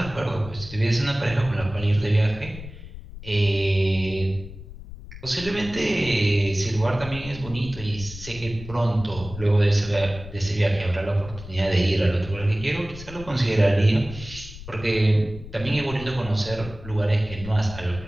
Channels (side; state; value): left; noise; rumble, 14 dB below the sound